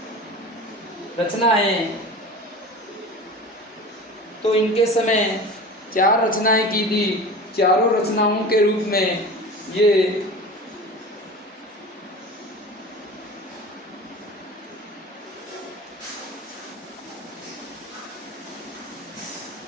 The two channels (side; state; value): both; normal; correlation 0.34